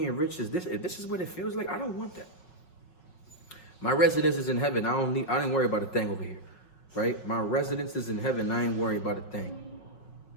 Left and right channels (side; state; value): right; late; 5.4 ms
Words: rich is this, if this is what it feels like, I don't want that. My residence is in heaven. I ain't worry about a thing over here, right? My residence is in heaven. I ain't worry about a thing.